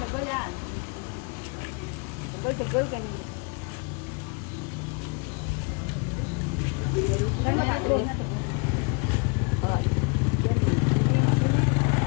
tegol kan. Tegol kan ini. Kan makan tegol.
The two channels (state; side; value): quieter; right; 33.4 dB